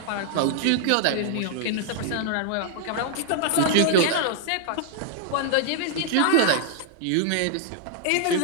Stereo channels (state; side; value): different; both; correlation 0.00